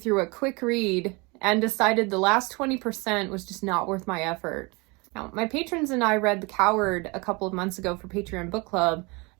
a quick read and decided the last 20% was just not worth my effort. Now, my patrons and I read The Coward a couple of months ago for Patreon Book Club,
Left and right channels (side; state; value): left; quieter; 27.3 dB